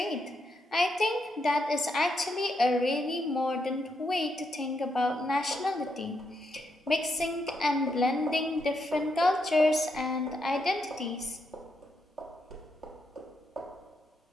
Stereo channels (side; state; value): both; normal; correlation 0.80